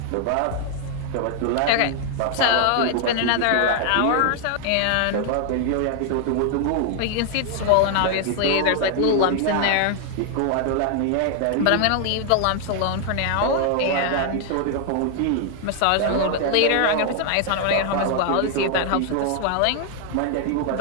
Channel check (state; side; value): different; both; correlation 0.00